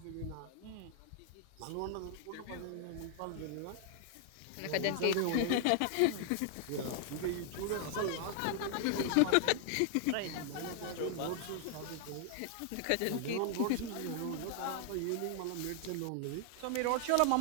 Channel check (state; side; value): different; both; correlation 0.00